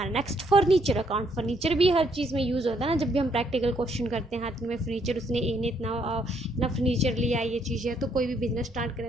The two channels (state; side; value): normal; both; correlation 0.70